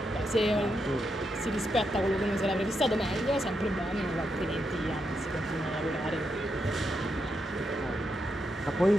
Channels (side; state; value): both; normal; correlation 0.83